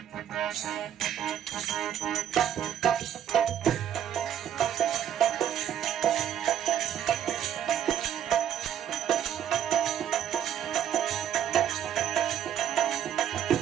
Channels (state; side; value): quieter; left; 9.9 dB